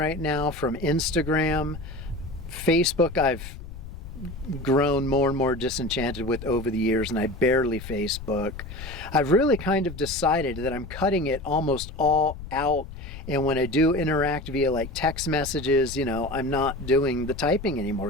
now from Instagram. Facebook, I've grown more and more disenchanted with over the years, and I barely Facebook. I've really kind of decided that I'm cutting it almost all out. And when I do interact via like text messages, I'm not doing the typing anymore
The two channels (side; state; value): left; noise; rumble, 12 dB below the sound